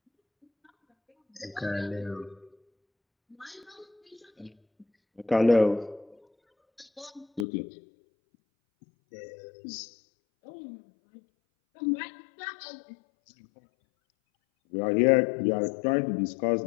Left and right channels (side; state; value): right; drops out; at 7.5 s